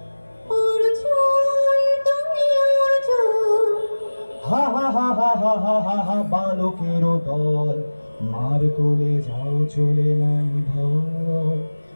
হা হা হা হা হা হা হা হা বালকেরও দল মার কোলে যাও চলে নাই ভয়।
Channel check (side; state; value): both; inverted; correlation -1.00